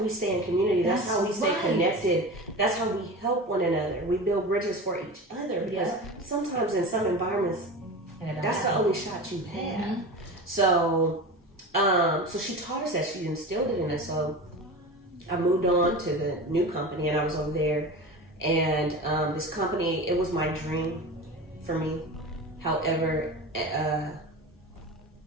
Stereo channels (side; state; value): both; normal; correlation 0.30